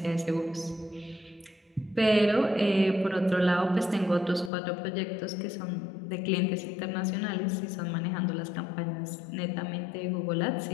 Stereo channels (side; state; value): right; drops out; at 4.5 s